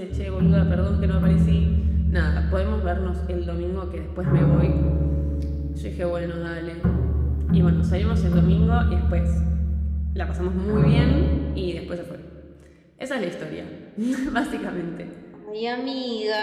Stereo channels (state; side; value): identical; both; correlation 1.00